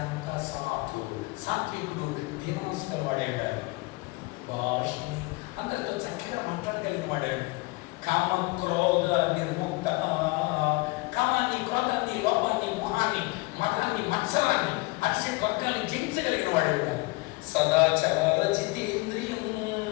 సాధు సాత్వికుడు దీనమనస్కుల వాడే ఉండాలి. భాషిణి అందరితో చక్కగా మాట్లాడగలిగిన వాడాడు. కామక్రోధ నిర్ముక్త, కామాన్ని, క్రోధాన్ని, లోపాన్ని, మోహాన్ని, మతాన్ని, మత్సరాన్ని, అక్షయ వర్గాన్ని జయించగలిగిన వాడు. సదాచార జితేంద్రియం,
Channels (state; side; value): quieter; right; 24.4 dB